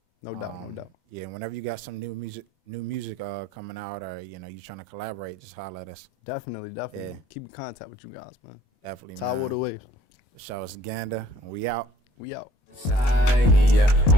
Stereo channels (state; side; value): late; right; 21 ms